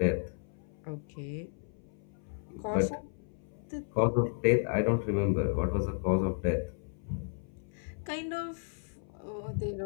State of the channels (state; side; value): silent; right; 55 dB below the other